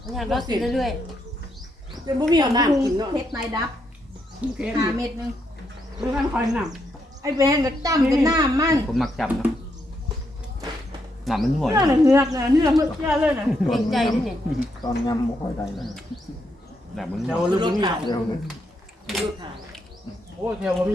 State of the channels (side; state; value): both; normal; correlation 0.79